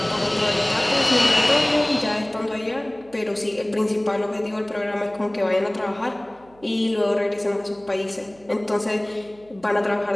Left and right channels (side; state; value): right; noise; hum, 28 dB below the sound